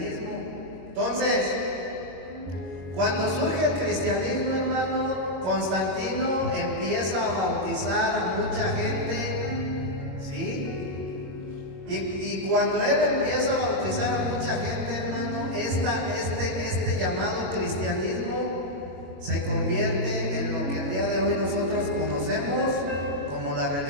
Entonces, cuando surge el cristianismo, hermano, Constantino empieza a bautizar a mucha gente, ¿sí? Y cuando él empieza a bautizar a mucha gente, hermano, este llamado cristianismo se convierte en lo que el día de hoy nosotros conocemos como la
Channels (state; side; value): late; left; 22 ms